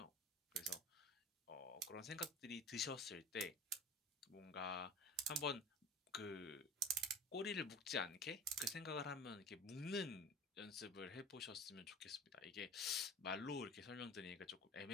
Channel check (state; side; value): normal; both; correlation 0.36